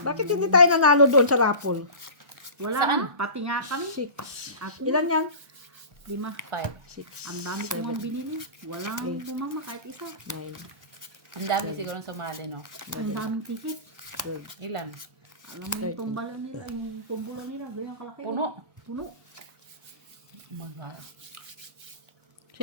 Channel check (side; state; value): left; late; 1.2 ms